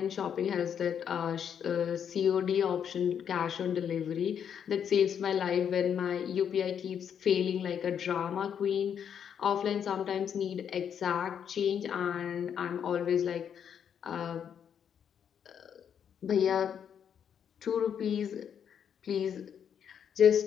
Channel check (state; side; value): quieter; right; 8.2 dB